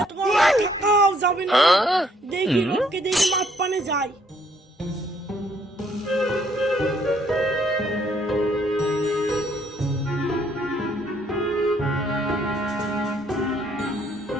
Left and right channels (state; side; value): normal; both; correlation 0.67